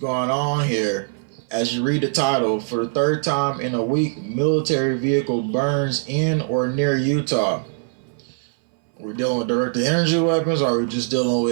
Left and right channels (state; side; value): silent; left; 60 dB below the other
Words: on here? As you read the title, for the third time in a week, military vehicle burns in or near Utah. We're dealing with directed energy weapons, or are we just dealing